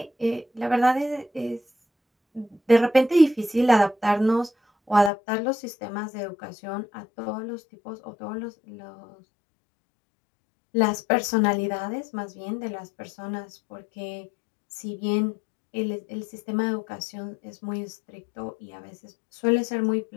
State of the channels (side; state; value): right; drops out; at 5.1 s